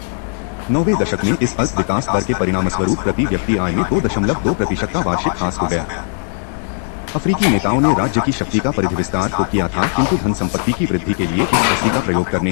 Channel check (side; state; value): right; silent; digital silence